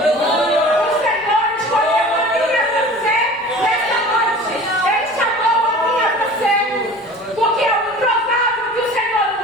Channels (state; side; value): noise; left; rumble, 30 dB below the sound